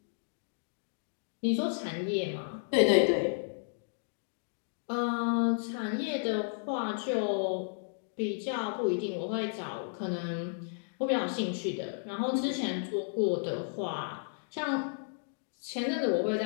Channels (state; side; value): silent; right; digital silence